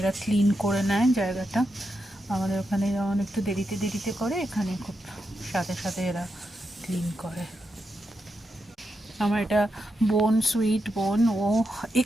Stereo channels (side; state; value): both; normal; correlation 0.85